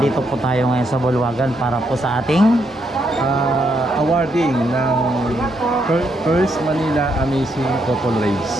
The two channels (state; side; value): normal; both; correlation 0.77